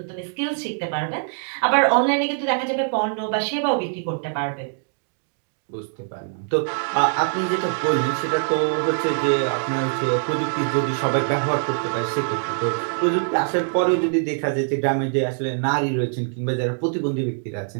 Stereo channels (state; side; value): silent; left; digital silence